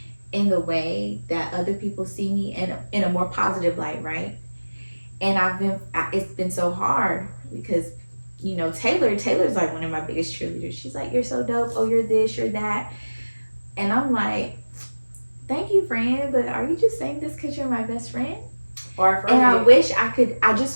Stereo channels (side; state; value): both; inverted; correlation -1.00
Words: in the way that other people see me, in a more positive light, right? And it's been so hard because, you know, Taylor's like one of my biggest cheerleaders. She's like, you're so dope. Oh, you're this, you're that. And I'm like, thank you, friend, but are you just saying this because you're my best friend? And I